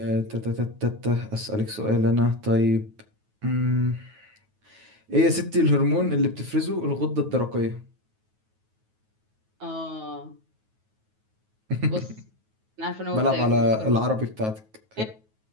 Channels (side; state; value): left; late; 9.3 ms